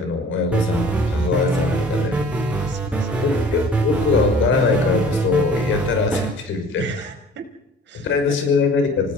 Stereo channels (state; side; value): normal; both; correlation 0.48